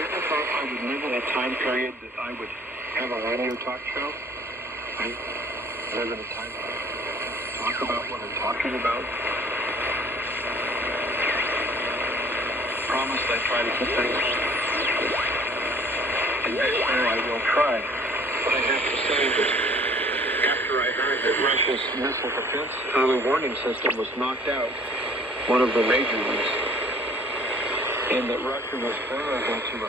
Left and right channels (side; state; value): both; normal; correlation 0.53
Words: thought I would live in a time period that I would have a radio talk show. I live in a time period to talk about what I'm talking about. Promise I try to keep things. And next year I will try. But I have to say that after I heard that Russia's missile defense early warning system was knocked out, one of the major ones, and that Russia was vulnerable to a